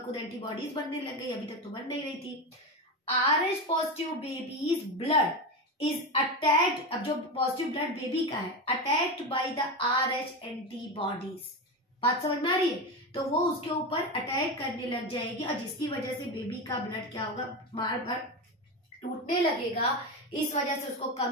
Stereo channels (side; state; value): both; normal; correlation 0.18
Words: खुद एंटीबॉडीज बनने लग गई, अभी तक तो बन नहीं रही थी। RH positive baby's blood is attacked, अब जो पॉजिटिव ब्लड बेबी का है, attacked by the RH antibodies. बात समझ में आ रही है? तो वो उसके ऊपर अटैक करने लग जाएगी और जिसकी वजह से बेबी का ब्लड क्या होगा, बार बार टूटने लगेगा, इस वजह से उसको